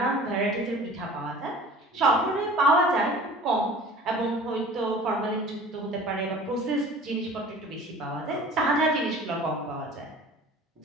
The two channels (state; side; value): normal; both; correlation 0.44